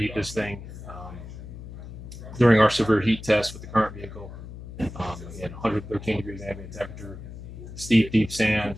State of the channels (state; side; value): noise; left; hum, 12 dB below the sound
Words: this thing. During our severe heat test with the current vehicle, again, 113 degrees ambient temperature, steep, deep sand,